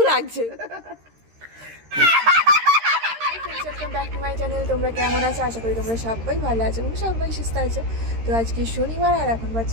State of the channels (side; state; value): left; late; 13 ms